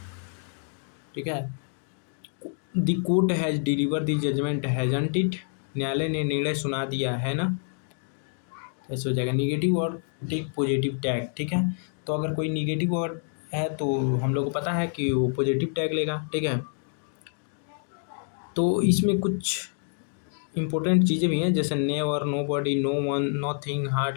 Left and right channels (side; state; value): right; silent; 60 dB below the other